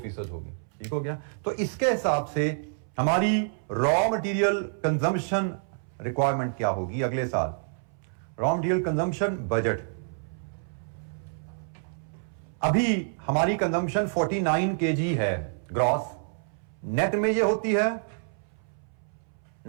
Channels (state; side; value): silent; left; 59 dB below the other